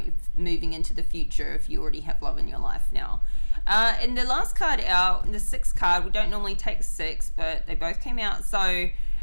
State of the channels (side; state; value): both; inverted; correlation -1.00